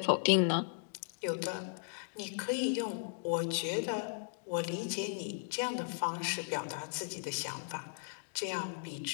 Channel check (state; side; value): silent; right; digital silence